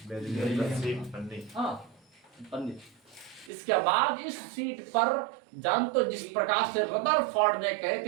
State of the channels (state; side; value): drops out; left; at 3.5 s